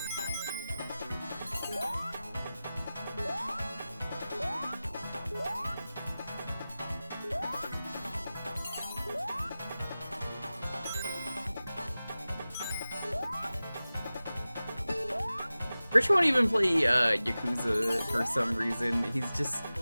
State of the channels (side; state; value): both; inverted; correlation -0.96